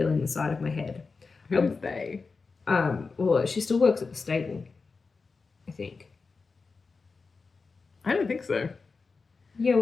the side of my head. Who's they? Well, she still works at the stable, I think. I don't think so. Yeah,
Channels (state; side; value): quieter; right; 4.4 dB